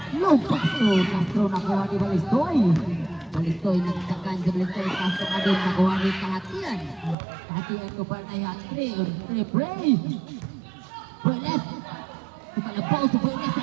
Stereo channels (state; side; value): drops out; left; at 7.2 s